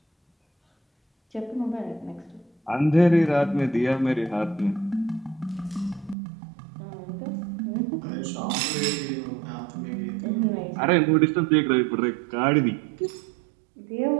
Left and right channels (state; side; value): drops out; left; at 6.2 s